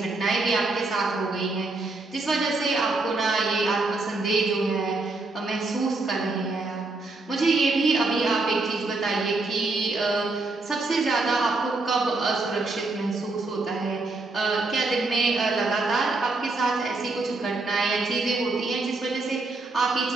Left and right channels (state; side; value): quieter; left; 3.4 dB